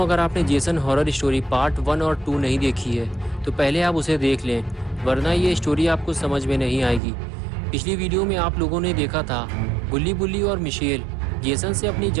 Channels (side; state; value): left; drops out; at 7.0 s